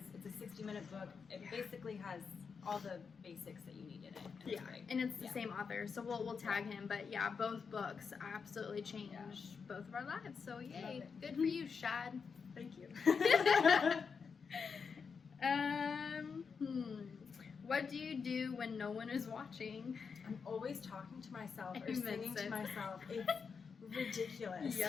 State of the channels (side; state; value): right; quieter; 5.7 dB